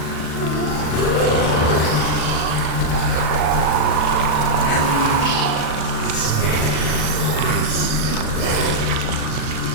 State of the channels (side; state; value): right; late; 38 ms